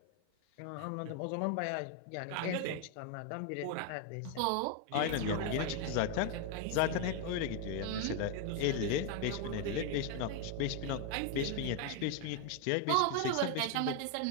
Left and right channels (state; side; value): different; both; correlation 0.01